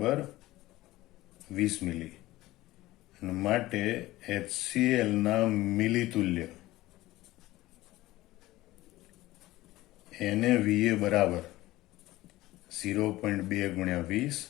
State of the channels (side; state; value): right; quieter; 17.5 dB